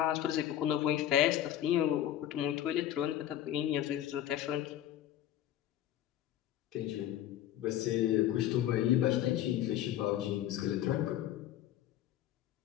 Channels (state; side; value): quieter; right; 12.1 dB